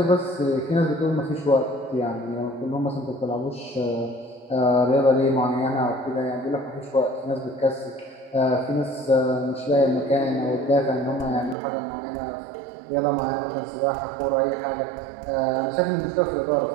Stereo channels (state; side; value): drops out; left; at 11.6 s